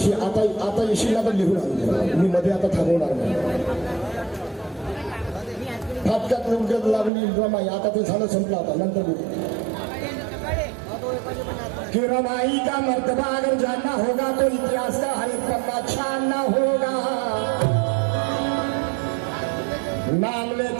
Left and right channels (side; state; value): left; drops out; at 7.1 s